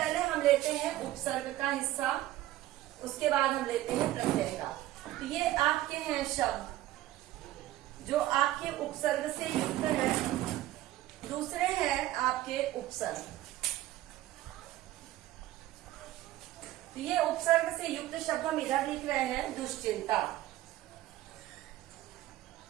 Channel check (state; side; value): quieter; left; 15.1 dB